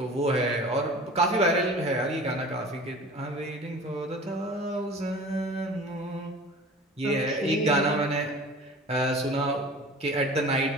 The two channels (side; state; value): both; normal; correlation 0.41